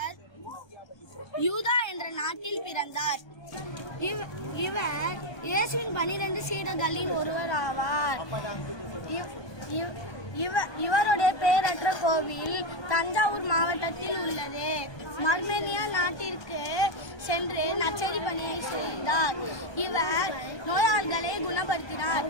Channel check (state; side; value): late; right; 1.2 ms